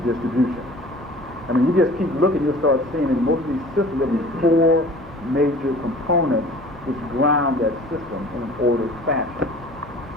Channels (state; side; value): normal; both; correlation 0.45